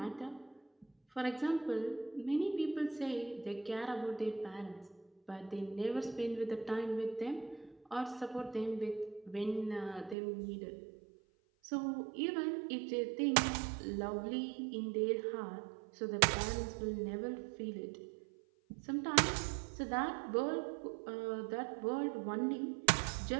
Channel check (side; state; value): left; drops out; at 10.2 s